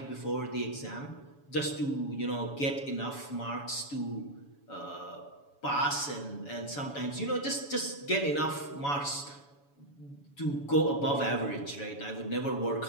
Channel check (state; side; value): late; right; 7.1 ms